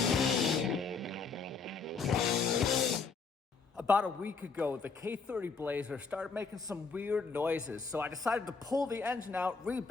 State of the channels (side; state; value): right; quieter; 4.8 dB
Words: About a week ago, the K30 Blazer started making some weird noises, so I decided to pull the engine out,